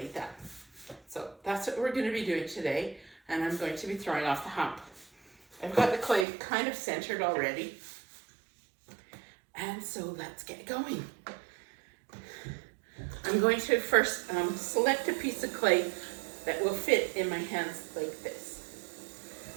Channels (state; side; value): drops out; left; at 6.2 s